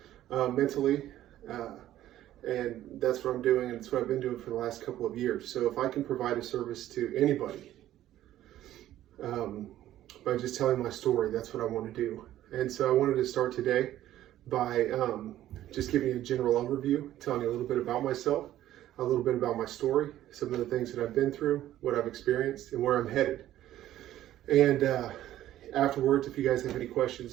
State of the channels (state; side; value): quieter; left; 13.2 dB